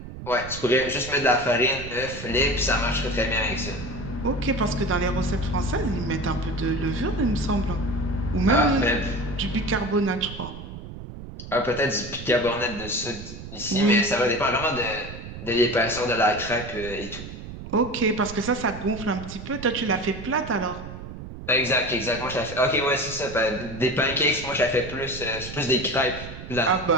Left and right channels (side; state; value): right; noise; rumble, 11 dB below the sound